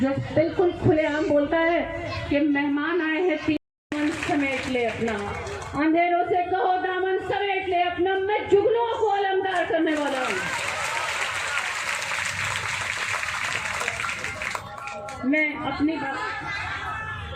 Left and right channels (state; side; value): identical; both; correlation 1.00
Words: जो बिल्कुल खुलेआम बोलता है कि मेहमान आए हैं, दामन समेट ले अपना, अंधेरों से कहो दामन समेट ले अपना, मैं जुगनुओं को अलमदार करने वाला हूँ। मैं अपनी बात